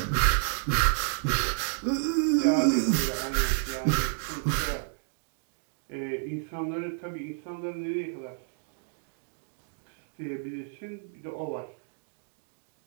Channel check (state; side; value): silent; left; digital silence